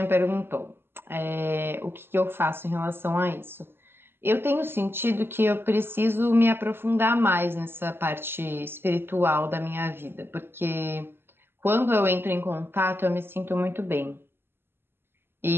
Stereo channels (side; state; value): left; late; 0.11 ms